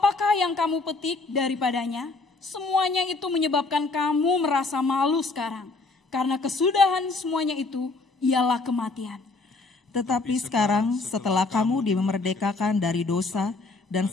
yang kamu petik daripadanya? Semuanya itu menyebabkan kamu merasa malu sekarang. Karena kesudahan semuanya itu ialah kematian. Tetapi sekarang setelah kamu dimerdekakan dari dosa dan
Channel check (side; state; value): right; quieter; 3.6 dB